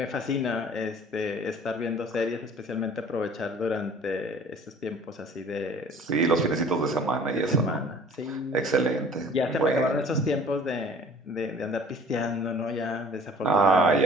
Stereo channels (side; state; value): both; normal; correlation 0.50